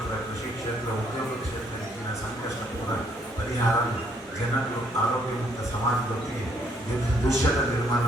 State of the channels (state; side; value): normal; both; correlation 0.68